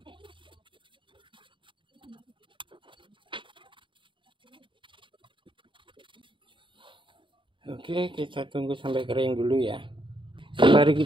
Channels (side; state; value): left; late; 0.24 ms